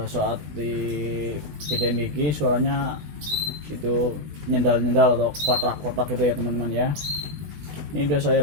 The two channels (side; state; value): left; late; 20 ms